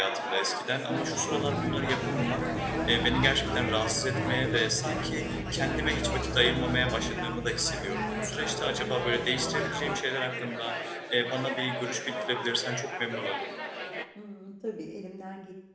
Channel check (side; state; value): both; identical; correlation 1.00